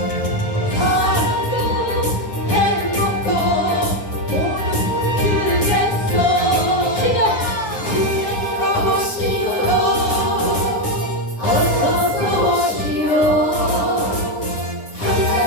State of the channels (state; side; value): late; right; 9.7 ms